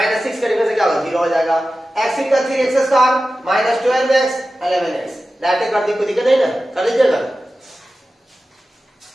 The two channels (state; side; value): normal; both; correlation 0.94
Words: 6 करने से क्या होगा 0 हो जाएगा, x का 3x square minus 12x 11x, direct कर दी, कोई दिक्कत नहीं ना, कर लीजिएगा।